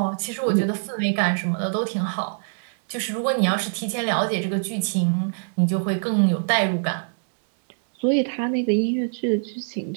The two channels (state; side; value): silent; left; 63 dB below the other